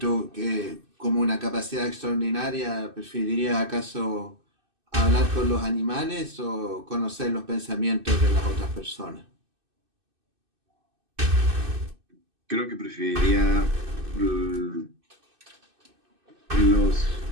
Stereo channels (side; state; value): left; late; 2.6 ms